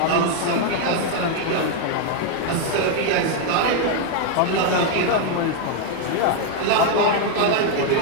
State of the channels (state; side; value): different; both; correlation 0.01